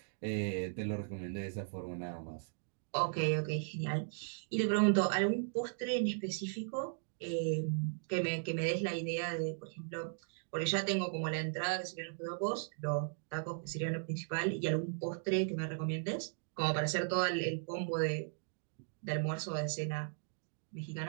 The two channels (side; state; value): left; silent; digital silence